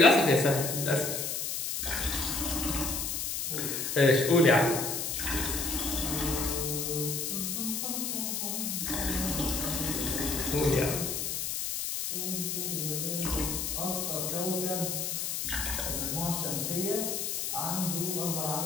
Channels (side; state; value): left; noise; hiss, 2 dB below the sound